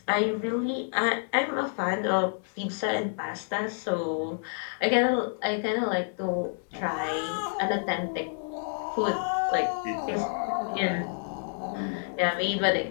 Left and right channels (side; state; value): right; silent; 59 dB below the other